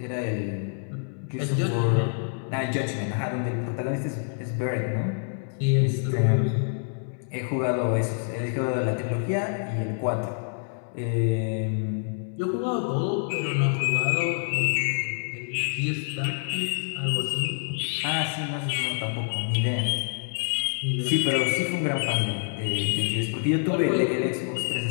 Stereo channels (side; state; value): right; silent; 60 dB below the other